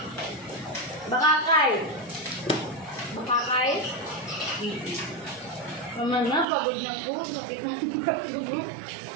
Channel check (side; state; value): left; drops out; at 6.5 s